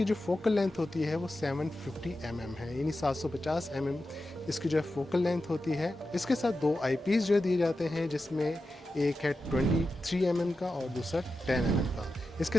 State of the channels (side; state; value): both; normal; correlation 0.91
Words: जो फोकल लेंथ होती है वो 750 mm है, यानी 750 mm इसकी जो है फोकल लेंथ होती है। इसके साथ दो आईपीस जो दिए जाते हैं, जिसमें एक है 23 mm का और दूसरा 10 mm का। इसके